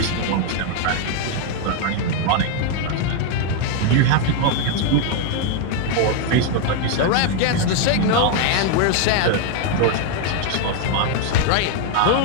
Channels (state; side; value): different; both; correlation 0.01